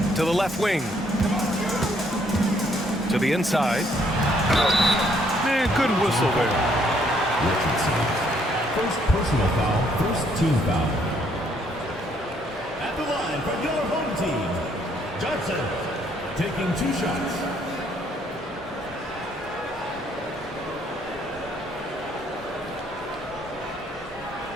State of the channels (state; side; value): normal; both; correlation 0.68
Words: To the left wing. To the inside. Man, good whistle there. Richardson. First personal foul, first team foul. At the line for your home team, Johnson taking 2 shots.